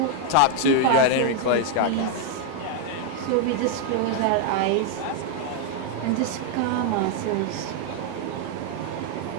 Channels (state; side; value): different; both; correlation 0.00